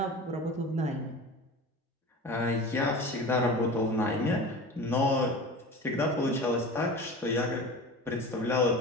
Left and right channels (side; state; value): both; normal; correlation 0.34